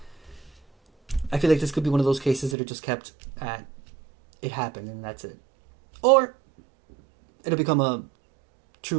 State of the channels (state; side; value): drops out; left; at 2.6 s